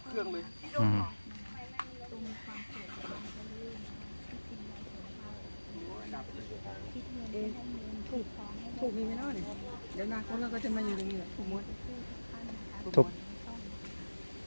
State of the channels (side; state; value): both; inverted; correlation -1.00